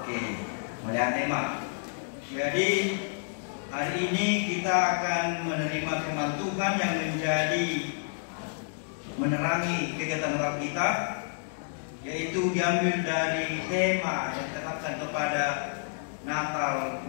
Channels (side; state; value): right; silent; digital silence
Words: melihat tema. Jadi hari ini kita akan menerima firman Tuhan yang menjadi menerangi kegiatan Natal kita, yaitu diambil dari tema yang ditetapkan kepada Natal